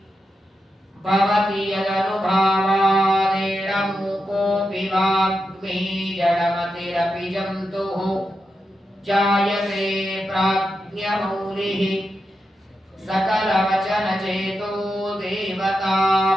भवति यदनुभावादेडमूकोऽपि वाग्मी जडमतिरपि जन्तुः जायते प्राज्ञमौलिः सकलवचनचेतो देवता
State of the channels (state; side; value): normal; both; correlation 0.87